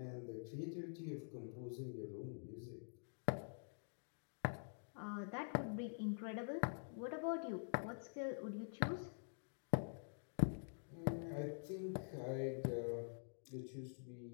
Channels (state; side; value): silent; right; digital silence